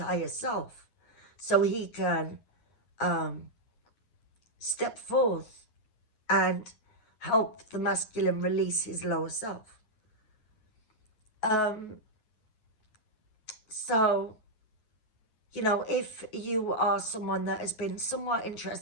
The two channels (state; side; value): late; right; 9.4 ms